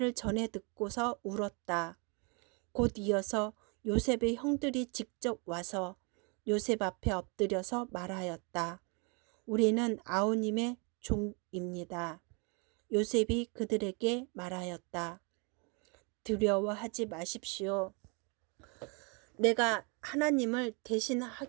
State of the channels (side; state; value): left; quieter; 32.9 dB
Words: 전해 듣고서 울었다. 곧 이어서 요셉의 형들이 직접 와서 요셉 앞에 엎드려서 말하였다. 우리는 아우님의 종입니다. 요셉이 그들에게 말하였다. 두려워하지 마십시오. 내가 하나님을